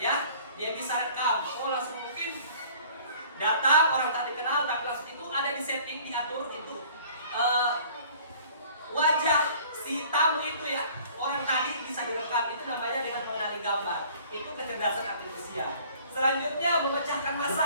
Dia bisa rekam. Langsung mungkin datang orang tak dikenal, tapi langsung itu ada di setting, diatur itu wajah si tamu itu ya, orang tadi bisa direkam. Itu namanya dengan mengenali gambar. Itu kecerdasan artifisial. Selanjutnya memecahkan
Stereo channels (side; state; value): both; inverted; correlation -0.51